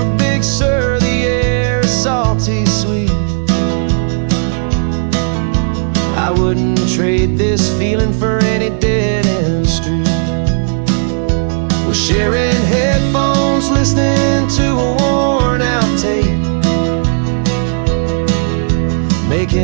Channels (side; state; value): left; silent; 70 dB below the other